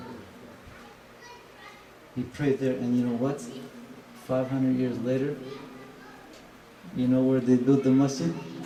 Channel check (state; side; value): identical; both; correlation 1.00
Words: He prayed there, and you know what? 500 years later, you know where they built the masjid?